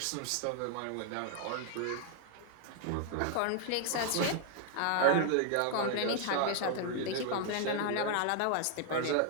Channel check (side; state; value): both; different; correlation 0.00